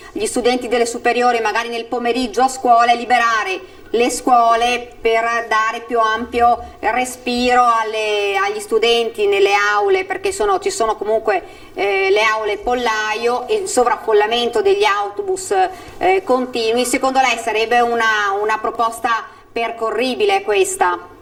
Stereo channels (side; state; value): both; identical; correlation 1.00